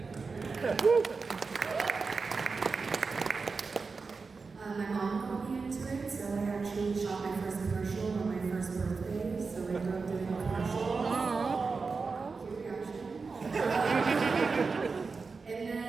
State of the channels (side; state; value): left; quieter; 4.5 dB